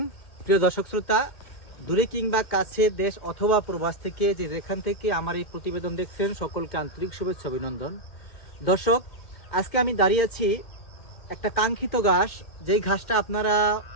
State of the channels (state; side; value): late; right; 2.1 ms